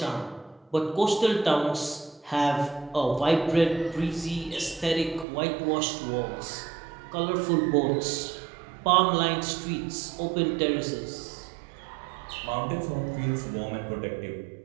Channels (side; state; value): left; drops out; at 5.2 s